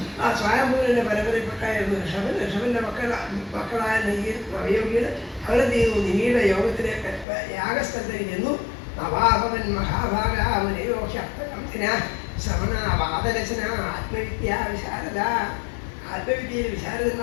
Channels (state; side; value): drops out; right; at 7.2 s